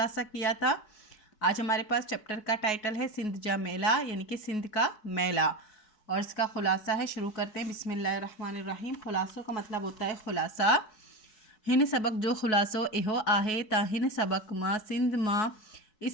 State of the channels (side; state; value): right; late; 4.7 ms